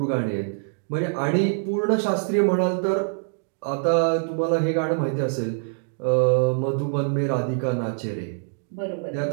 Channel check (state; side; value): silent; left; digital silence